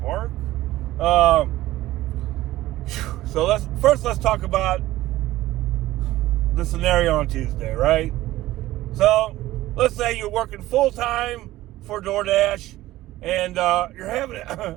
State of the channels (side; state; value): left; quieter; 16.1 dB